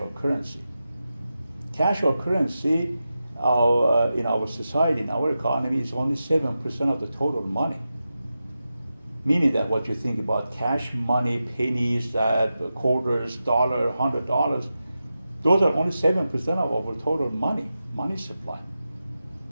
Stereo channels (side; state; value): both; inverted; correlation -0.91